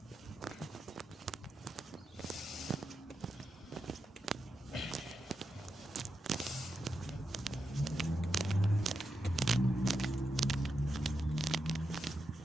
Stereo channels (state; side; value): normal; both; correlation 0.87